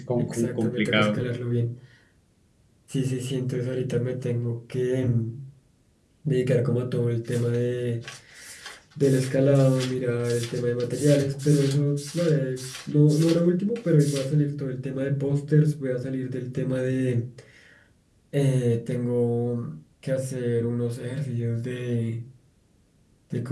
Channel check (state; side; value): identical; both; correlation 1.00